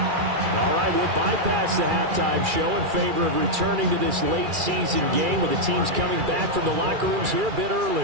All right, we'll bypass the halftime show in favor of returning to this late season game with the teams coming back from the locker rooms here a bit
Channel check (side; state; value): left; late; 2.4 ms